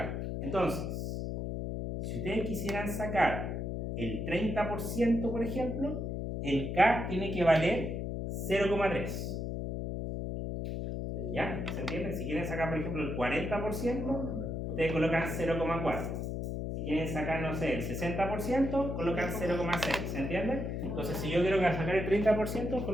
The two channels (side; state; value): left; noise; hum, 3 dB below the sound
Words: Entonces, si ustedes quisieran sacar el 30%, por ejemplo, el K tiene que valer 0,3. ¿Ya? ¿Se entiende? Si quieren sacar, por ejemplo, el 40%, ustedes colocan 0,4. Si quieren sacar, no sé, el 60%, colocan 0,6. ¿Se entiende? Entonces, si yo quiero sacar el 30%,